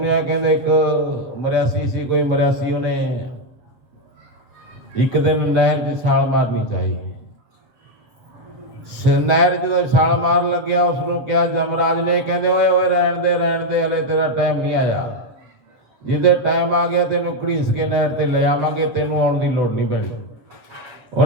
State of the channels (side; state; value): left; late; 7.7 ms